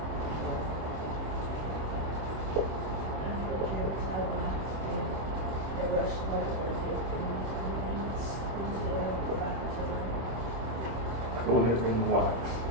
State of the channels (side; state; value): left; late; 26 ms